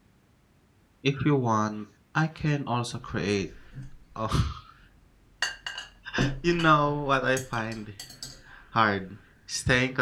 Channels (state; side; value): identical; both; correlation 1.00